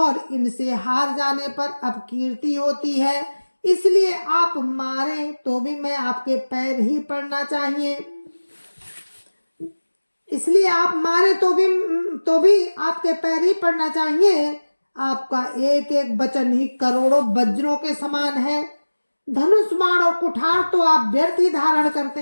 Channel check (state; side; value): inverted; both; correlation -1.00